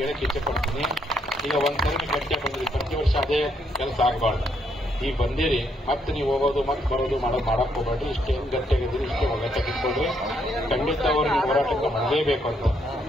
ಹೇಳಕ್ಕೆ ಇಚ್ಛೆ ಪಡ್ತೀನಿ. ಈಗ ಒಂದ್ಸರಿ ಗಟ್ಟಿಯಾಗಿ ಬಂದ್ರಿ, ಪ್ರತಿ ವರ್ಷ ಅದೇ ಕೆಲಸ ಆಗಬಾರ್ದು. ಈಗ ಬಂದಿರಿ, ಮತ್ತೆ ನೀವು ಹೋಗೋದು ಮತ್ತೆ ಬರೋದು ಮಾಡಕ್ ಹೋಗ್ಬೇಡ್ರಿ. ಇಷ್ಟೇ ಗಟ್ಟಿಯಾಗಿದ್ದೀರಿ, ಇಷ್ಟೇ ಒಗ್ಗಟ್ಟಾಗಿಟ್ಕೊಳ್ರಿ. ಖಂಡಿತ ಅವರು ನಿಮ್ಮ ಹೋರಾಟಕ್ಕೆ ಮಾಡಲೇಬೇಕು ಅಂತ.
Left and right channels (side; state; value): both; normal; correlation 0.74